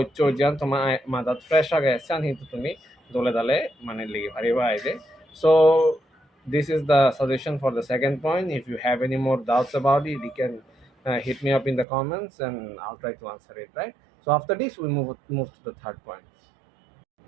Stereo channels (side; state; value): left; drops out; at 11.9 s